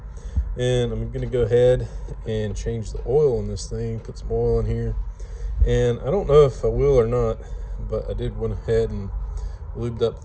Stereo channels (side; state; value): both; identical; correlation 1.00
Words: And I'm going to go ahead and change the oil in this thing. Put some oil in here. And I don't know if I will or not, but I did went ahead and lubed up